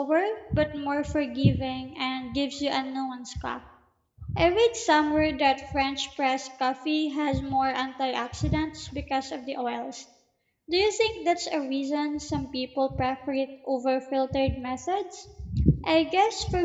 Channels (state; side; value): identical; both; correlation 1.00